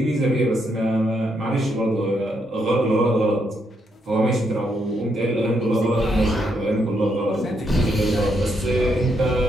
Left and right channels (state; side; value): normal; both; correlation 0.77